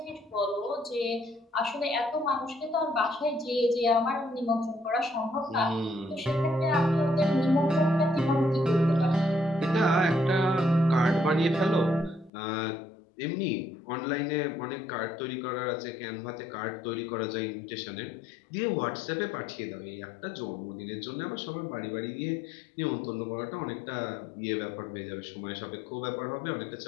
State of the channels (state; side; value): drops out; right; at 12.3 s